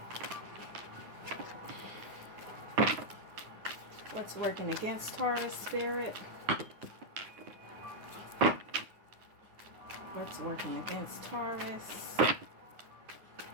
What's working against Taurus, Spirit? What's working against Taurus?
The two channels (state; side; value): late; left; 9.5 ms